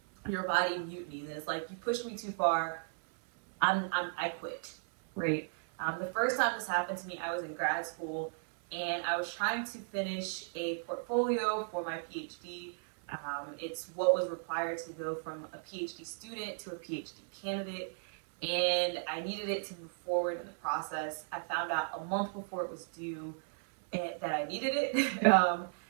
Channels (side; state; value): left; silent; 54 dB below the other